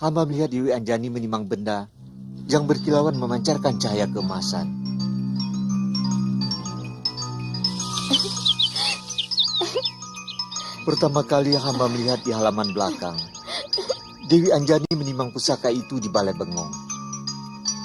hamba melihat Dewi Anjani menimang benda yang berkilauan memancarkan cahaya keemasan. Pertama kali hamba melihat di halaman belakang, Dewi Anjani menimang pusaka itu di balai bengong.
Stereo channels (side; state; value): both; identical; correlation 1.00